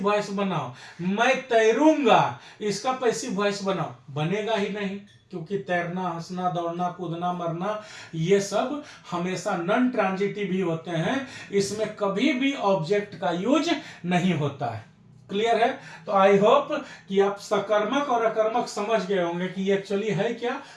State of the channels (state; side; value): identical; both; correlation 1.00